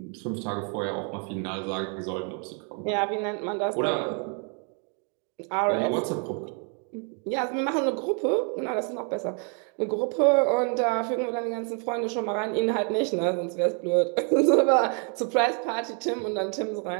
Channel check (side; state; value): left; quieter; 39.5 dB